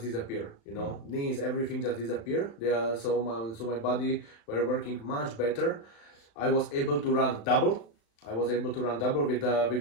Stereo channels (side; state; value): right; late; 35 ms